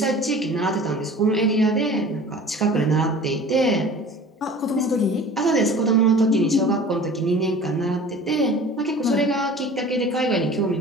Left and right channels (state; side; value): normal; both; correlation 0.43